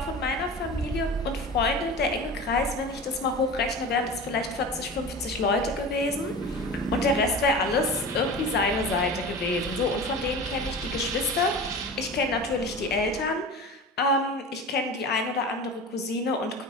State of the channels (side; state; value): both; normal; correlation 0.33